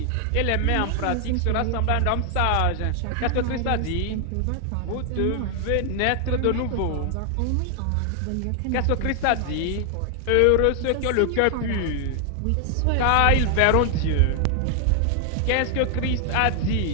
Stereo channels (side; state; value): both; different; correlation 0.00